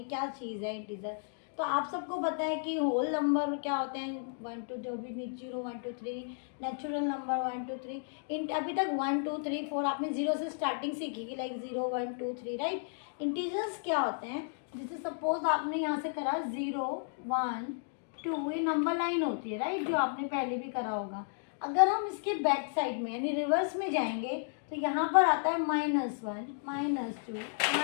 क्या चीज़ है इंटीजर. तो आप सबको पता है कि होल नंबर क्या होते हैं, 1 2 जो भी 0 1 2 3, नेचुरल नंबर 1 2 3. इन अभी तक 1 2 3 4 आपने जीरो से स्टार्टिंग सीखी कि लाइक 0 1 2 3 राइट. इंटीजर्स क्या होते हैं, जैसे सपोज आपने यहाँ से करा 0 1 2, ये नंबर लाइन होती है राइट, जो आपने पहले भी करा होगा. अगर हम इसके बैक साइड में यानी रिवर्स में जाएंगे तो यहाँ पर आता है -1 -2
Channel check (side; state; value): right; silent; digital silence